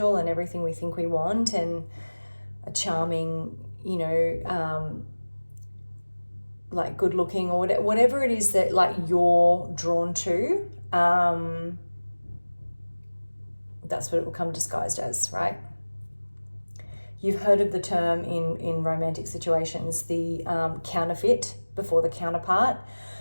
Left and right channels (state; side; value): inverted; both; correlation -1.00